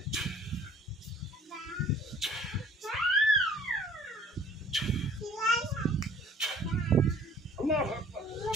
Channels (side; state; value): both; normal; correlation 0.53